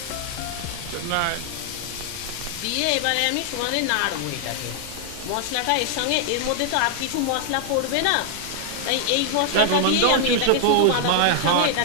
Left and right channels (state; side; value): different; both; correlation 0.00